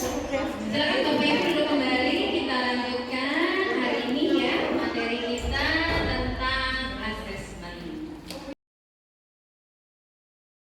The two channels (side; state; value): both; identical; correlation 1.00